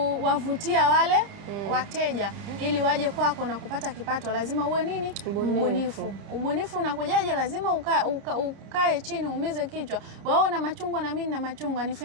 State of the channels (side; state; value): left; late; 30 ms